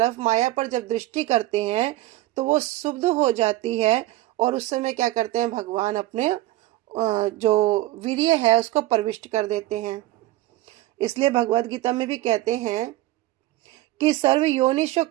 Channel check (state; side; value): quieter; left; 16.9 dB